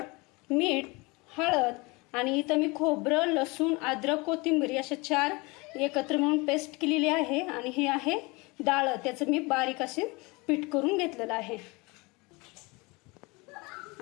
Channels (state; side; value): quieter; right; 25.8 dB